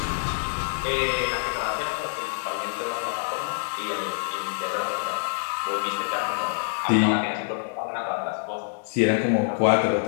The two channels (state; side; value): silent; right; digital silence